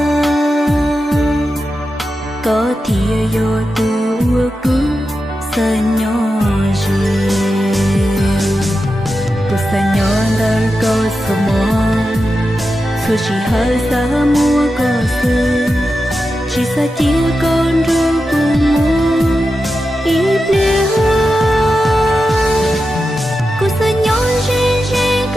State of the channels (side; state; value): both; normal; correlation 0.90